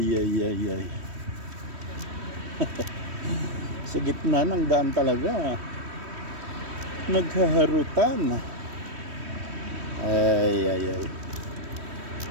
Sa gitna ng daan talaga naghaharutan. Ay.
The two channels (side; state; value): left; late; 3.1 ms